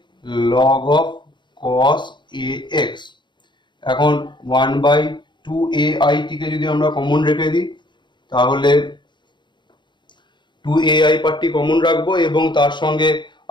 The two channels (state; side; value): late; right; 0.22 ms